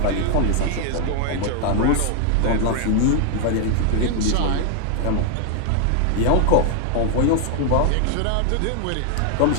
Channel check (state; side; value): different; both; correlation 0.00